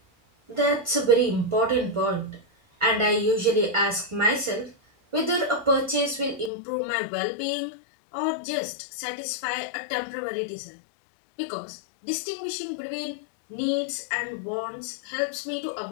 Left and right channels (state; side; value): drops out; right; at 6.5 s